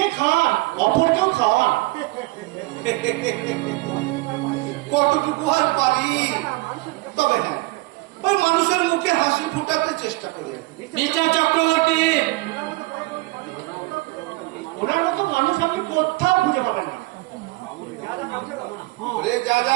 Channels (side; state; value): left; quieter; 22.5 dB